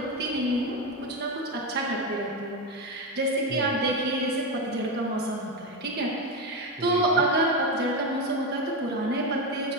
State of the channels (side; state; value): both; normal; correlation 0.12